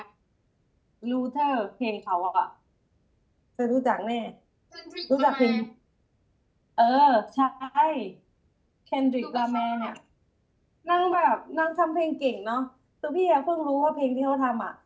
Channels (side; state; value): both; identical; correlation 1.00